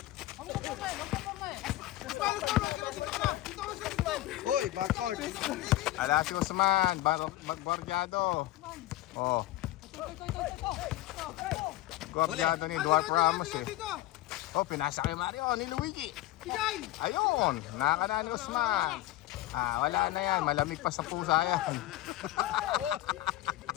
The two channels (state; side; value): quieter; right; 16.1 dB